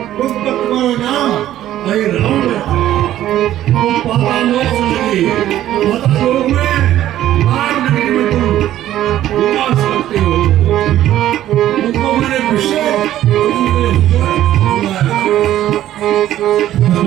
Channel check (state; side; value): quieter; left; 12.8 dB